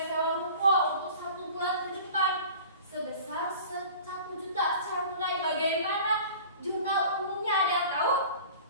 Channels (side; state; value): both; inverted; correlation -0.42